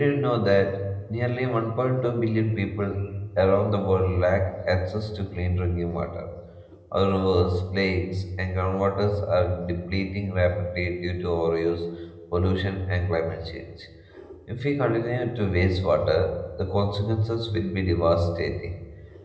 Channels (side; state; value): both; identical; correlation 1.00